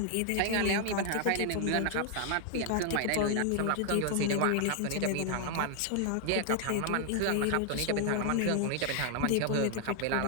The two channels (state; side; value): different; both; correlation 0.00